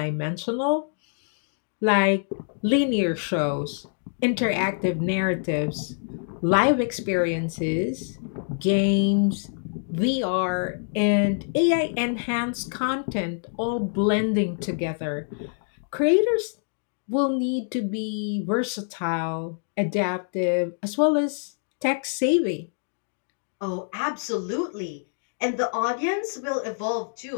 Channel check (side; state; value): right; silent; digital silence